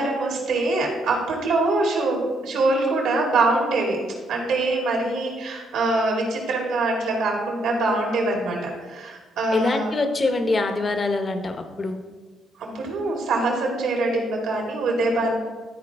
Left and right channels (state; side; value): normal; both; correlation 0.73